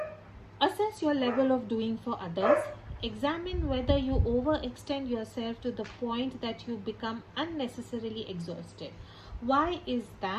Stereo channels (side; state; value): both; identical; correlation 1.00